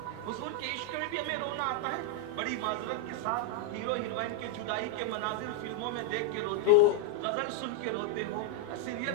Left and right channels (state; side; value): different; both; correlation 0.00